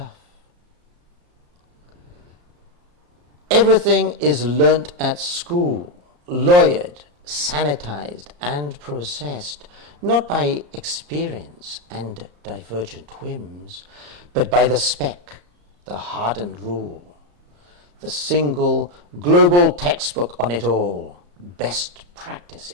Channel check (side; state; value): left; late; 34 ms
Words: Everything is learnt at school, lawyered, sanitized and processed, not by experience and divergent whims, but by the spec, the hardened rule, the single global textbook on it all. Best practice